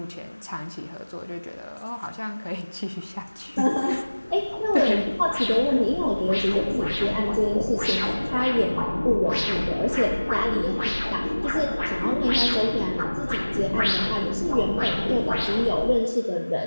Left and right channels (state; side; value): inverted; both; correlation -1.00